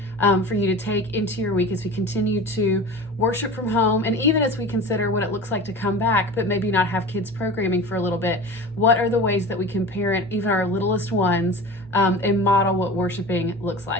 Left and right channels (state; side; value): normal; both; correlation 0.34